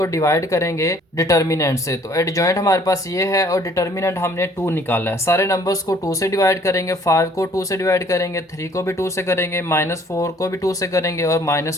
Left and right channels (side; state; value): both; normal; correlation 0.58